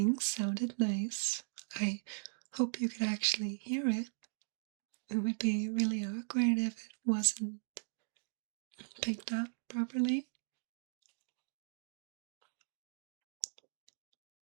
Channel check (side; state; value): left; silent; digital silence